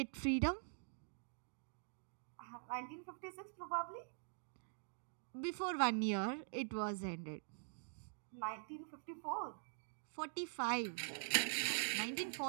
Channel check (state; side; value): silent; left; digital silence